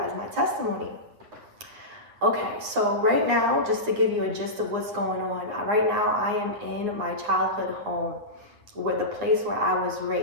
my testimony. Okay, so right now, just to give you a gist of what's going on, right now I am in my childhood home, the place where I was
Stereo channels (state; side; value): late; left; 9.4 ms